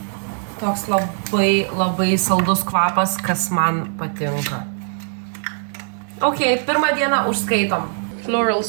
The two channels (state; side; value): silent; left; digital silence